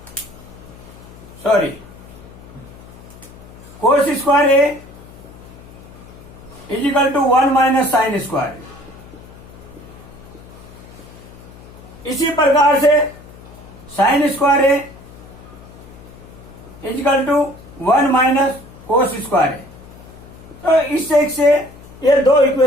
cos square A equal to 1 minus sine square. इसी प्रकार से sine square A equal to 1 minus cos square है। तो इस एक से ये 2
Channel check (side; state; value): left; noise; hum, 19 dB below the sound